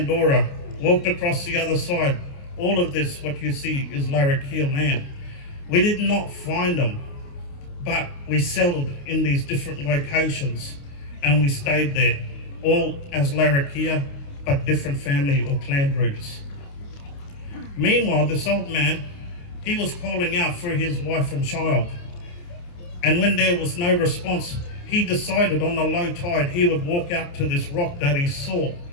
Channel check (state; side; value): late; right; 29 ms